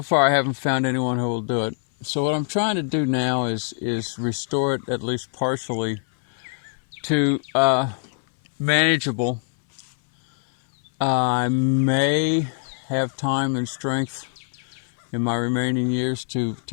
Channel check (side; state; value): right; silent; 59 dB below the other